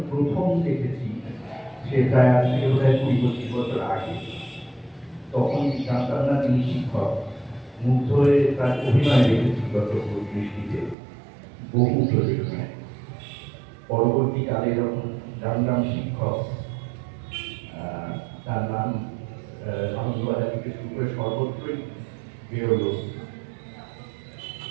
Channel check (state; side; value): drops out; left; at 11.0 s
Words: প্রথম দেখেছি, সে প্রায় আজ থেকে প্রায় 20-25 বছর আগে, তখন জানতাম না তিনি শিক্ষক। মুগ্ধ হয়ে তার অভিনয় দেখেছি গত দৃষ্টিতে, বহু প্রযোজনায়। পরবর্তীকালে যখন জানলাম শিক্ষক, তার নাম আনন্দবাজার থেকে শুরু করে সর্বত্রই বেরোলো।